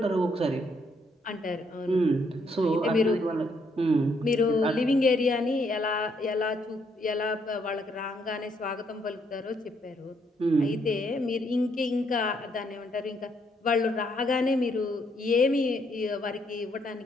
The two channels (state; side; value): normal; both; correlation 0.72